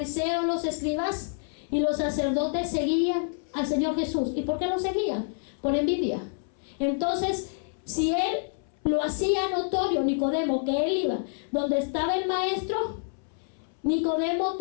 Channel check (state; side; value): silent; right; 60 dB below the other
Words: los escribas y los sacerdotes seguían al Señor Jesús. ¿Y por qué lo seguían? Por envidia. Entonces, si él lo hacía notorio, Nicodemo, que él iba donde estaba el maestro, Nicodemo